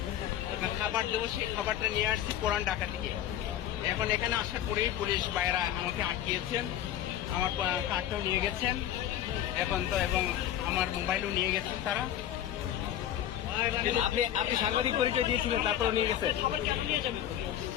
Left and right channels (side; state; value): right; quieter; 11.4 dB